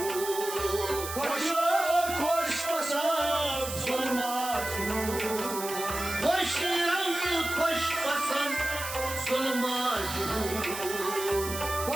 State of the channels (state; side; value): noise; right; hiss, 8 dB below the sound